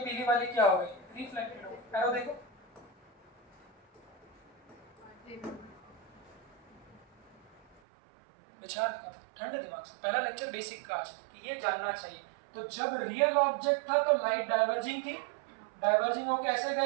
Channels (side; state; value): left; drops out; at 7.8 s